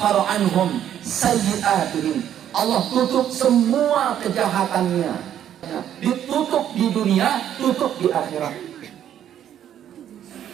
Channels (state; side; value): quieter; left; 10.4 dB